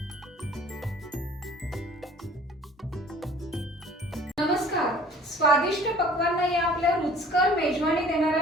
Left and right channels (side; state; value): both; normal; correlation 0.50